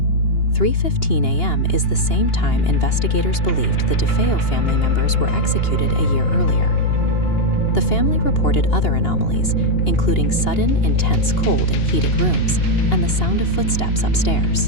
3:15 a.m. is the same time investigators believed the DeFeo family members were executed a year earlier. The family reported other anomalies, including sudden, intense cold in heated rooms and the sound of footsteps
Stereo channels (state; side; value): late; right; 2.8 ms